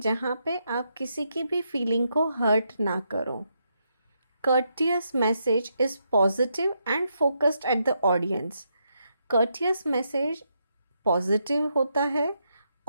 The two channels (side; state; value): both; inverted; correlation -0.80